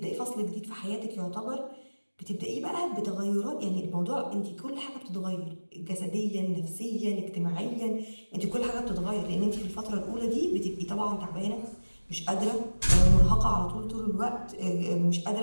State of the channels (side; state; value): both; inverted; correlation -1.00